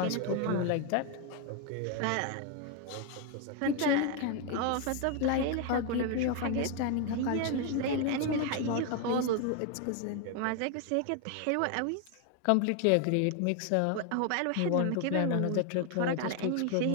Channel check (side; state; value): both; different; correlation 0.01